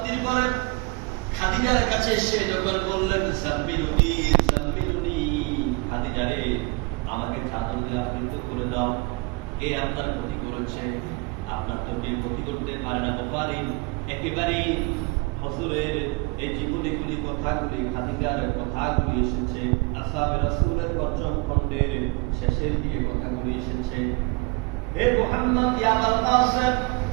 পরে খাদিজার কাছে এসে যখন বললেন সাম্মিলুনি সাম্মিলুনি, খাদিজা রে আমাকে চাদর দিয়ে আবৃত করে দাও, কে আপনার ক্ষতি করেছে? আপনার তো কেউ ক্ষতি করতে পারে না। পারি একেবারে হুজুরের এই জীবনীগুলি কথাগুলি খাদিজার কথাগুলি এসেছে, আসহাবে রাসূলের পঞ্চম খণ্ডের শেষের দিকে কথাগুলি এসেছে। হে মুহাম্মদ ইয়া আবুল কাসেম,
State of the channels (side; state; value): left; quieter; 27.7 dB